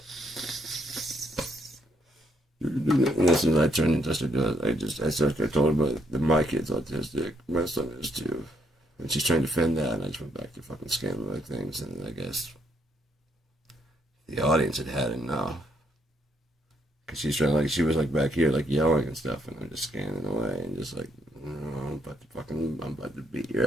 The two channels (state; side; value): normal; both; correlation 0.72